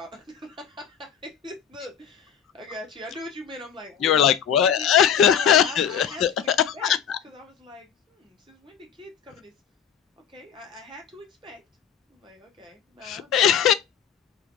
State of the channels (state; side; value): quieter; right; 8.5 dB